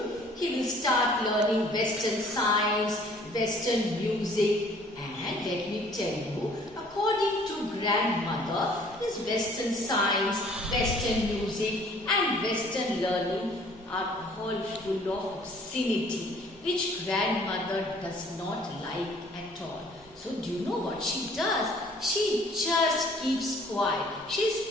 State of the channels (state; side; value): normal; both; correlation 0.56